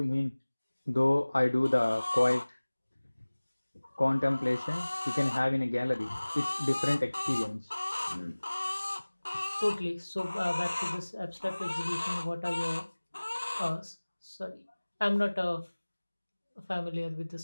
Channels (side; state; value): both; inverted; correlation -1.00